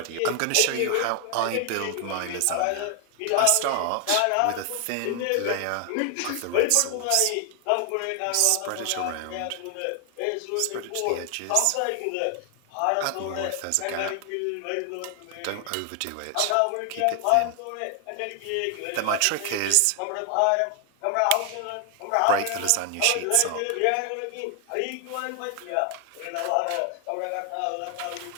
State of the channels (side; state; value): both; different; correlation 0.00